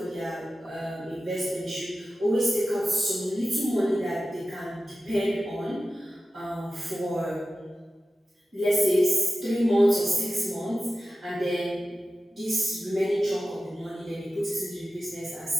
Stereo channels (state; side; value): normal; both; correlation 0.94